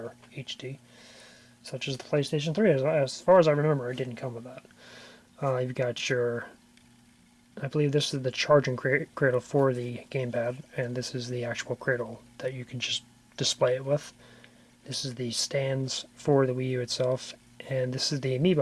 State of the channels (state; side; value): identical; both; correlation 1.00